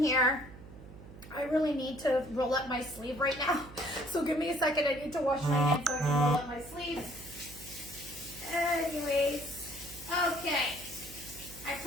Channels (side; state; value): right; noise; hum, 17 dB below the sound